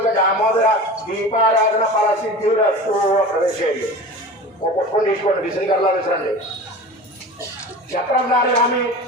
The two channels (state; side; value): normal; both; correlation 0.34